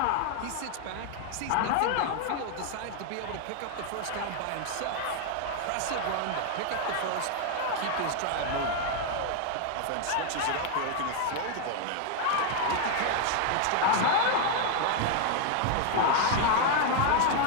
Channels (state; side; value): different; both; correlation 0.00